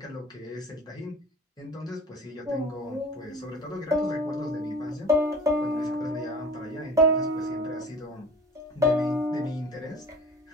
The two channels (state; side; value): normal; both; correlation 0.41